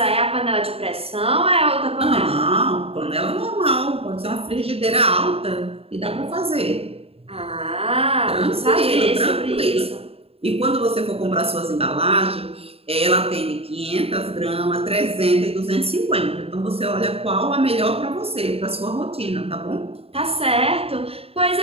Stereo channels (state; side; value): late; left; 0.28 ms